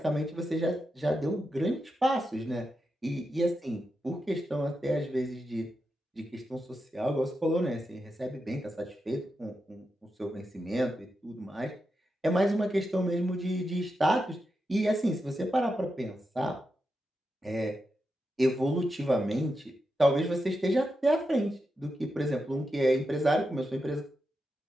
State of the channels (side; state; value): both; normal; correlation 0.87